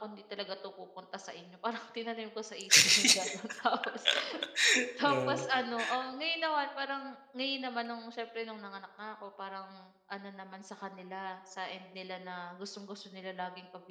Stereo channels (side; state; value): both; identical; correlation 1.00